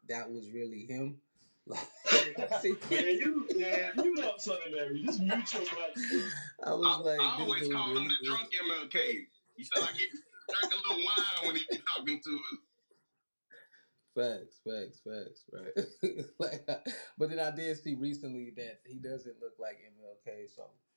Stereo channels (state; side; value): inverted; both; correlation -1.00